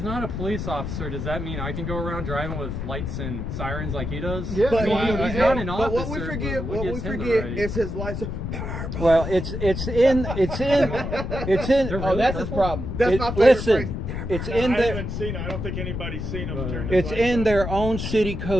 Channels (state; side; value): noise; left; rumble, 4 dB below the sound